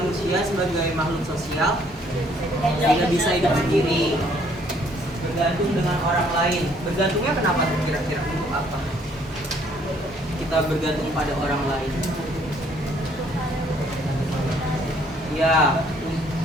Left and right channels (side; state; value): both; normal; correlation 0.63